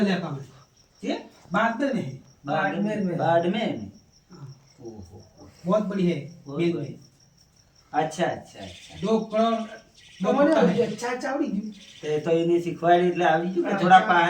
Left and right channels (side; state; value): both; identical; correlation 1.00